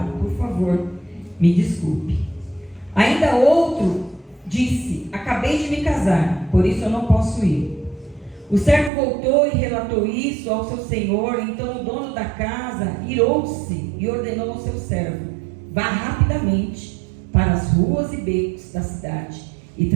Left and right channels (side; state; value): left; drops out; at 8.9 s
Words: por favor, me desculpe. Ainda outro disse: acabei de me casar, por isso eu não posso ir. O servo voltou e relatou isso ao seu senhor. Então o dono da casa irou-se e ordenou ao seu servo: vá rapidamente para as ruas e becos da cidade e